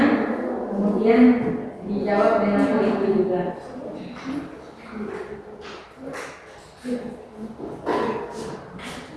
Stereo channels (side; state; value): both; identical; correlation 1.00